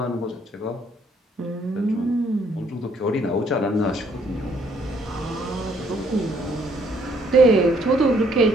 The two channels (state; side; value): normal; both; correlation 0.66